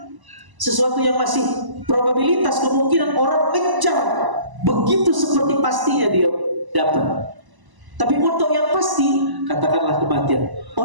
sesuatu yang masih probabilitas, kemungkinan orang kejar begitu seperti pastinya dia dapat. Tapi untuk yang pasti, katakanlah kematian,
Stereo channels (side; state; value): left; late; 1.0 ms